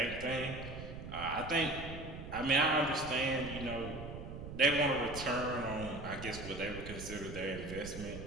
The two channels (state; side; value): noise; right; rumble, 9 dB below the sound